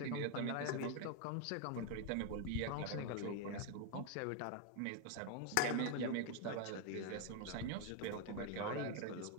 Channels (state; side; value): different; both; correlation 0.01